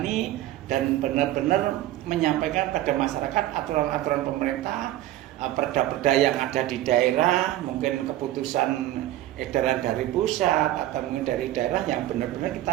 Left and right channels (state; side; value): quieter; left; 14.4 dB